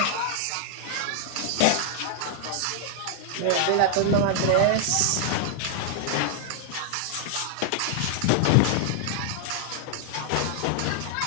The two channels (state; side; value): different; both; correlation 0.00